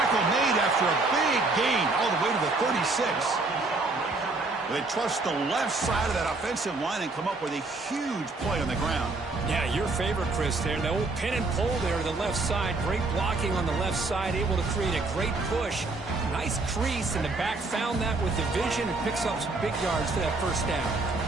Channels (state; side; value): quieter; left; 3.4 dB